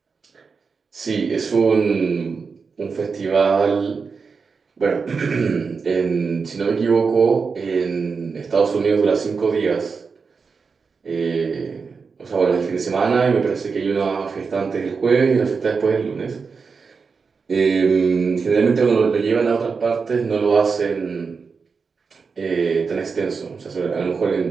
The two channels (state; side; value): quieter; left; 5.1 dB